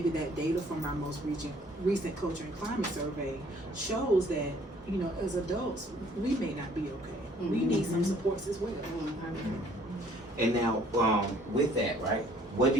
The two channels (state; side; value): normal; both; correlation 0.59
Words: that data from our most recent culture and climate survey shows that, as adults, we may not be okay. We need some supports as well. And now, with that, right? What do